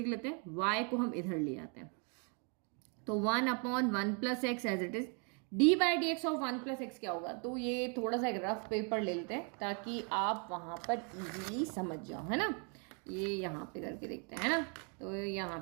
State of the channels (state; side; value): quieter; left; 37.9 dB